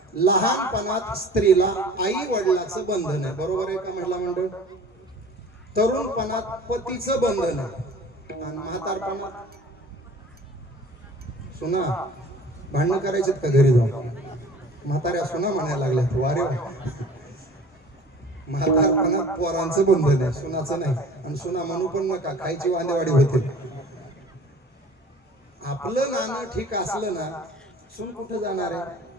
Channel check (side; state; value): both; normal; correlation 0.45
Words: लहानपणात स्त्रीला आई वडिलाचं बंधन आहे बरोबर आहे का महिला मंडळ तरुणपणात पतीचं बंधन आहे आणि म्हातारपणात सुना भांडणं करायचे का घरी जाऊन म्हाताऱ्या सुना म्हणायला लागल्या वारे म्हातारपणात पोरांचं बंधन आहे सुनाचं नाही आणि सुना म्हणू पण नका खायची वांदेवाडी होते आपलं नाणं ठीक असलं ना सून कुठे जाणार आहे